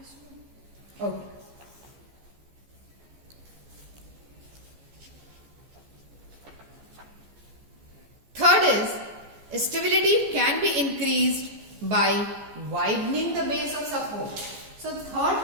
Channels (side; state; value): left; late; 14 ms